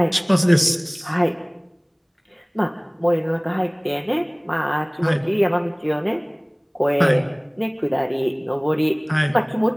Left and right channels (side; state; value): both; identical; correlation 1.00